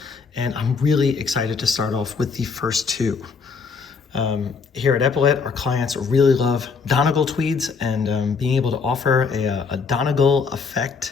and I'm really excited to start off with the first two. Here at Epaulet, our clients really love Donegal tweeds, and being able to offer a Donegal effect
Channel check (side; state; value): right; quieter; 5.1 dB